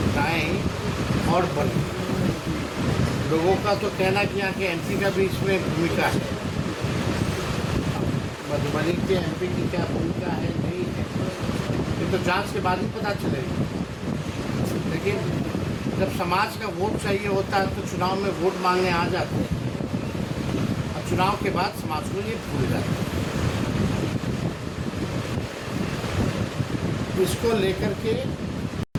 और बढ़ी। लोगों का तो कहना कि यहाँ के एमपी का भी इसमें भूमिका है। मधुबनी के एमपी की क्या भूमिका है नहीं है, ये तो जांच के बाद ही पता चलेगा। लेकिन जब समाज का वोट चाहिए होता है तो चुनाव में वोट मांगने आ जाते हैं, और चुनाव के बाद समाज को ये भूल जाते हैं। इसको लेकर के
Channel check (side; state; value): both; identical; correlation 1.00